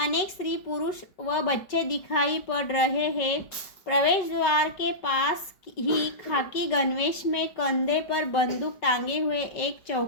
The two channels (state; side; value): late; right; 5.3 ms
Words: स्त्री पुरुष व बच्चे दिखाई पड़ रहे हैं. प्रवेश द्वार के पास ही खाकी गणवेश में कंधे पर बंदूक टांगे हुए एक